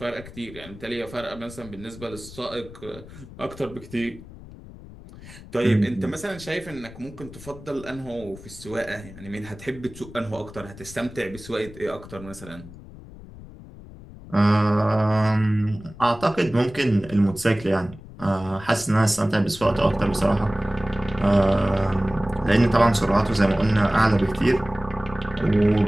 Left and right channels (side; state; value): left; noise; rumble, 17 dB below the sound